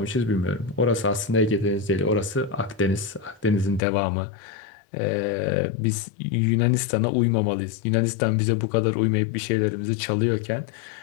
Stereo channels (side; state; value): right; drops out; at 3.8 s